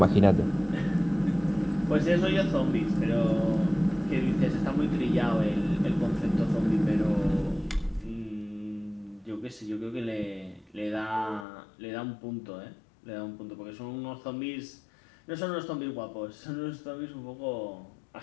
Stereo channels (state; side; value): drops out; right; at 11.5 s